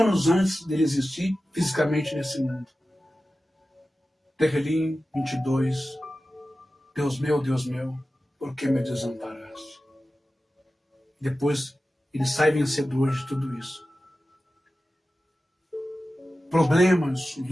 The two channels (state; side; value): normal; both; correlation 0.94